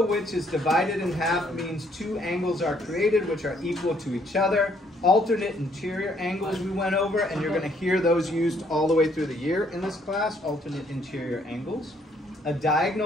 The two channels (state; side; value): normal; both; correlation 0.67